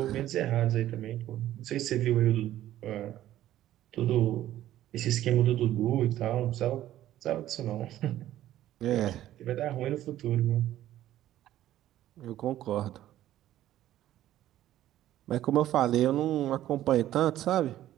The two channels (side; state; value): left; quieter; 13.3 dB